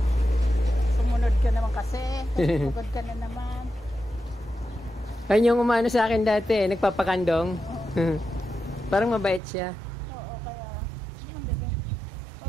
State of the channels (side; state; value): left; drops out; at 9.4 s